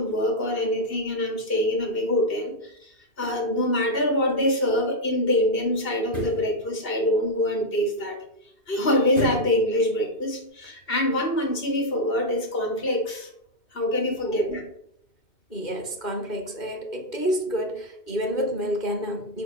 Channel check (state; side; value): late; right; 2.7 ms